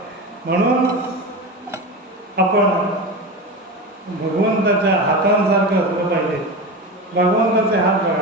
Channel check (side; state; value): both; normal; correlation 0.24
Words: म्हणून आपण भगवंताच्या हातांसारखं असलं पाहिजे. भगवंताचे हात